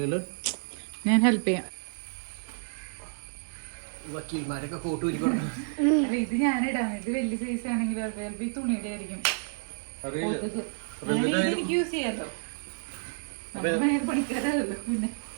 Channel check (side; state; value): left; silent; digital silence